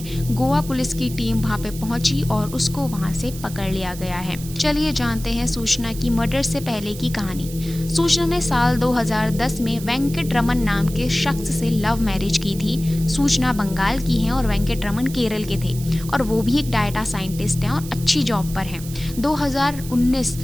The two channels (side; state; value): right; noise; hiss, 14 dB below the sound